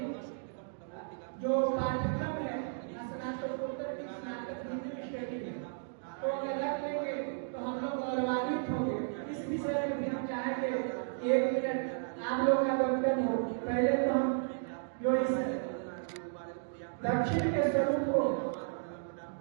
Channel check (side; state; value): left; silent; digital silence